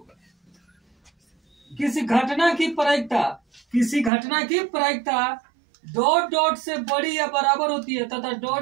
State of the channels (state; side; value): drops out; left; at 4.1 s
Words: किसी घटना की प्रायिकता डॉट डॉट से बड़ी या बराबर होती है तथा